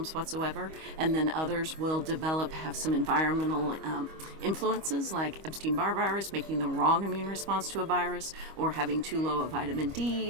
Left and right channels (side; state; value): left; late; 25 ms